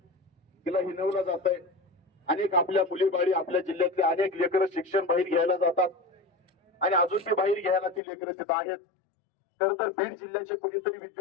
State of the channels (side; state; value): right; drops out; at 8.0 s